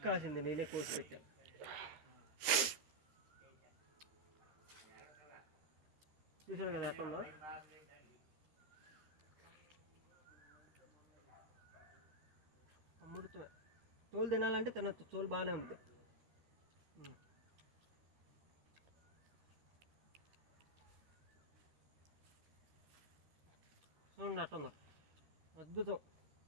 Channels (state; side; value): late; left; 13 ms